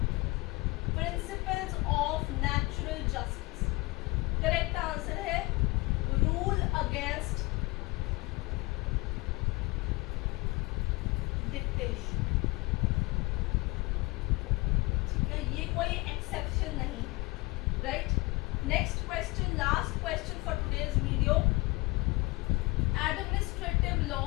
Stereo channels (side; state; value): right; quieter; 23.7 dB